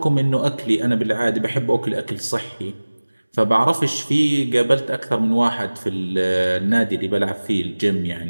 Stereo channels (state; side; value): inverted; both; correlation -1.00